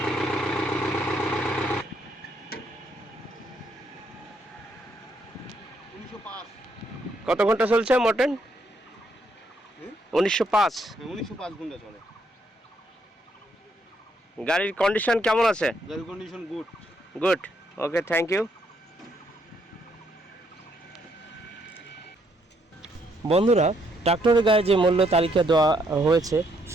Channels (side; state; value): both; normal; correlation 0.73